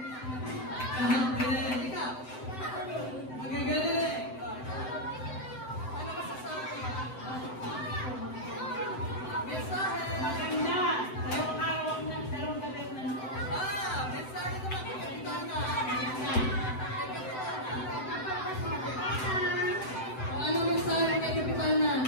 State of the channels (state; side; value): late; right; 7.9 ms